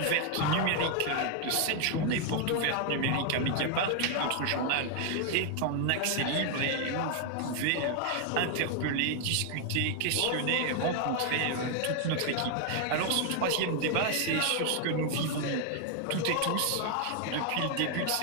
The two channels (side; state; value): both; different; correlation 0.00